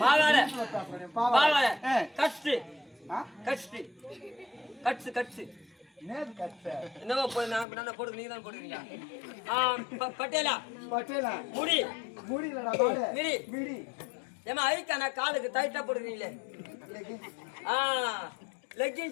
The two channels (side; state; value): right; drops out; at 7.7 s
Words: பாலாடை பாலாடை. பாலாடை ஆ. கட்ஸு ஆ? கட்ஸு கட்ஸு கட்ஸு நேது கட்ட. என்னவா போய் நான் போடுங்க நீங்க தான் போடுறீங்க பட்டேலா பட்டேலா. முடி முடியலடா, பாடு. Midi midi. ஏமா ஐக்கா நான் காலுக்கு டைட்டா போடுறீங்களே லெகின்ஸ்.